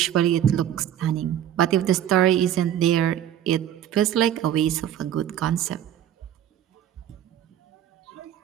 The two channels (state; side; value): quieter; left; 10.8 dB